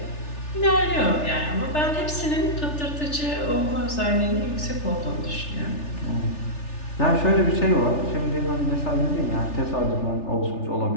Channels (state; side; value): late; right; 3.4 ms